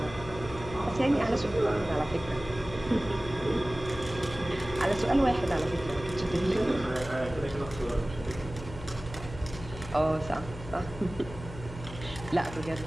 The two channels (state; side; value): noise; left; hum, 13 dB below the sound